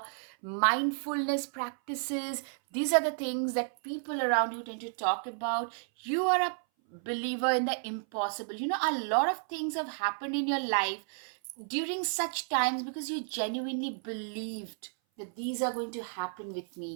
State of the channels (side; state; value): left; silent; 56 dB below the other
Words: mindfulness practices. These are the things that people around you tend to talk about. You are a believer in the impossible. A lot of things have happened in your life during such times because you genuinely believed that these are going to happen with